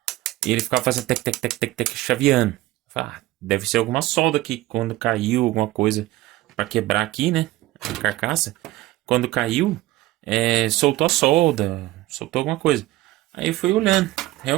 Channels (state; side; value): quieter; left; 17.2 dB